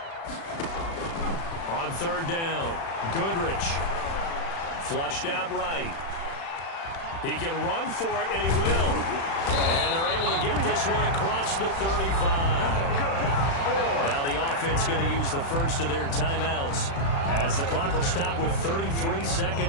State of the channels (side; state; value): right; late; 36 ms